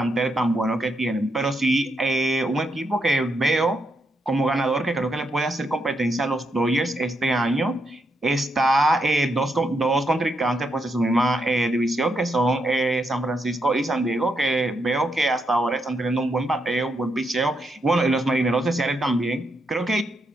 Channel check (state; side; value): normal; both; correlation 0.80